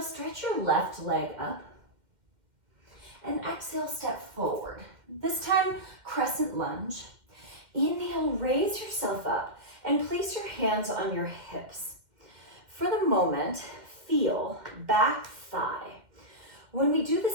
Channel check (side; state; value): left; late; 2.1 ms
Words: stretch your left leg up. And exhale, step forward. This time, crescent lunge. Inhale, raise yourself up and place your hands on your hips. For the moment, feel back thigh. When we do